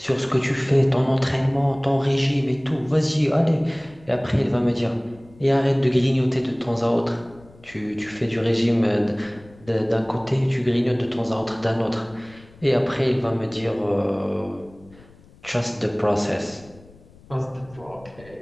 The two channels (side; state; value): left; noise; rumble, 24 dB below the sound